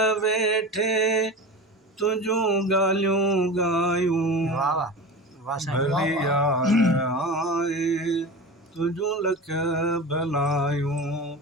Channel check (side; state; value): both; normal; correlation 0.30